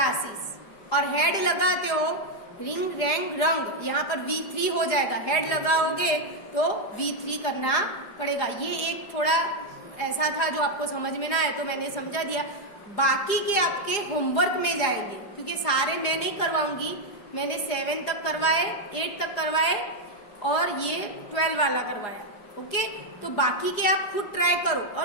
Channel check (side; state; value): right; late; 4.9 ms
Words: और हेड लगाते हो रिंग रैंक रंग, यहाँ पर V3 हो जाएगा, हेड लगाओगे तो V3 करना पड़ेगा। ये एक थोड़ा ऐसा था जो आपको समझ में ना आए तो मैंने समझा दिया। बाकी के आपके होमवर्क में जाएंगे, क्योंकि सारे मैं नहीं करवाऊंगी, मैंने 7 तक करवाए, 8 तक करवाए और ये 12 वाला करवाया। ओके, तो बाकी के आप खुद ट्राई करो,